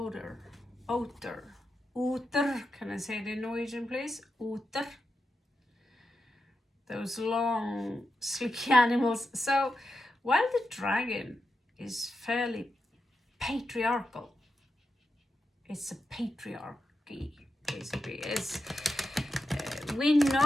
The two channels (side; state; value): both; normal; correlation 0.88